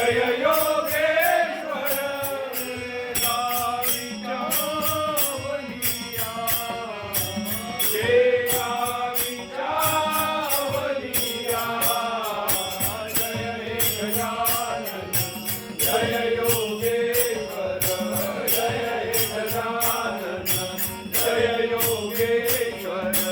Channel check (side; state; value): both; identical; correlation 1.00